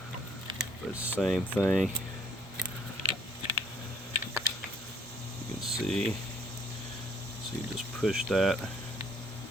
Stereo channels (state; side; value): normal; both; correlation 0.63